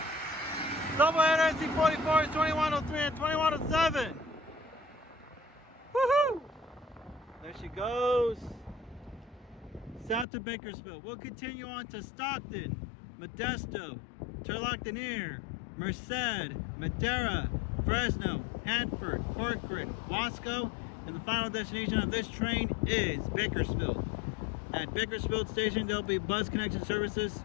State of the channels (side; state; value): right; drops out; at 10.2 s